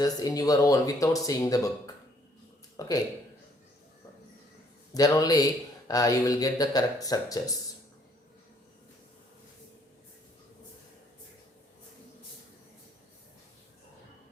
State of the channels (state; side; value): normal; both; correlation 0.65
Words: in your own without seeing the book. Okay, then only you will get the correct structures.